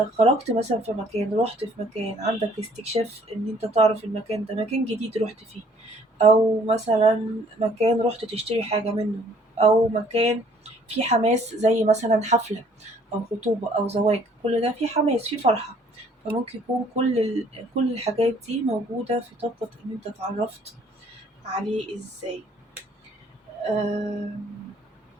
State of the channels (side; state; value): both; normal; correlation 0.60